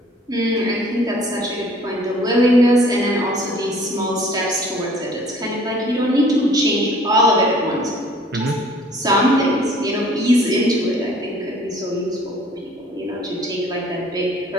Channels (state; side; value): normal; both; correlation 0.54